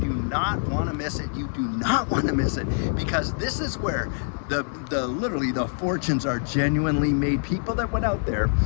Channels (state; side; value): silent; right; digital silence